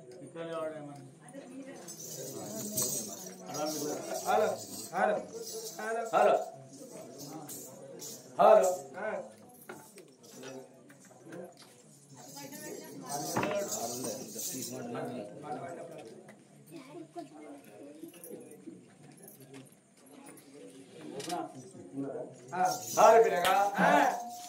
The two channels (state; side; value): identical; both; correlation 1.00